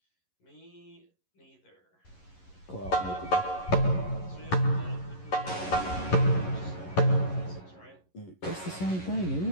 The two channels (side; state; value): right; late; 11 ms